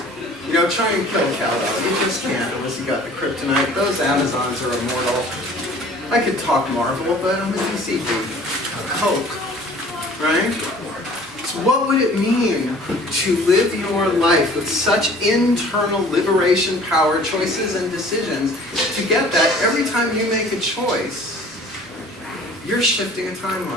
You know, try and kill Kal-El. You just can't unless you got the kryptonite. Those Amazons are immortal. I could talk Marvel, but I'm a DC dude. Coke, right? So what would it mean to live your life with such internal liberation power, choices and decisions, to get that every time you make a choice, you're shifting a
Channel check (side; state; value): both; normal; correlation 0.49